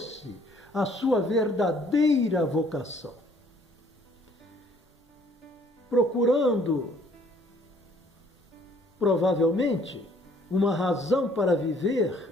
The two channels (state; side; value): normal; both; correlation 0.60